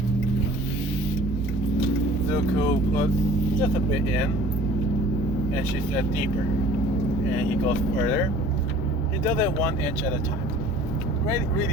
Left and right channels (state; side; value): normal; both; correlation 0.48